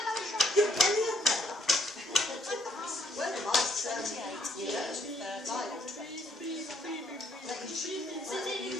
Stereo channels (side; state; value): both; normal; correlation 0.68